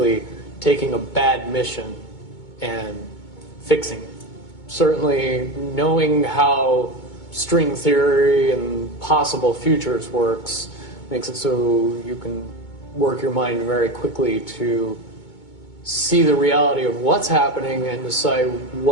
taking a bad mission and fixing it. Certainly knowing how string theory and possible futures works makes it so you can work your mind very quickly to see the reality of what's happening and decide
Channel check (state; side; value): late; right; 2.2 ms